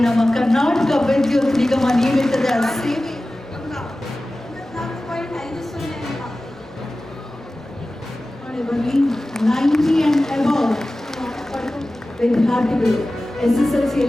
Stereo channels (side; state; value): both; normal; correlation 0.96